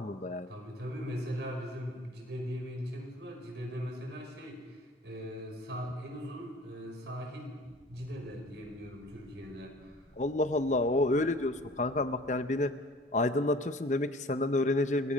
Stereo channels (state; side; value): normal; both; correlation 0.48